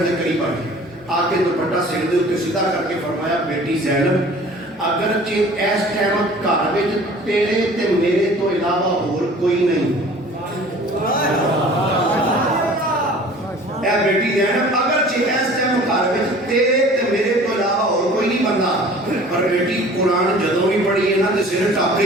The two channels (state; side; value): normal; both; correlation 0.47